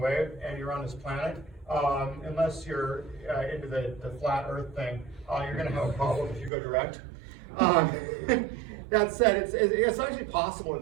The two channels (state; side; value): drops out; left; at 6.5 s